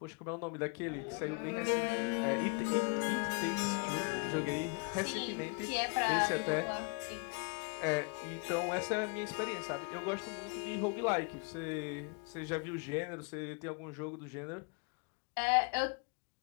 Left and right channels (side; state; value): right; quieter; 34.7 dB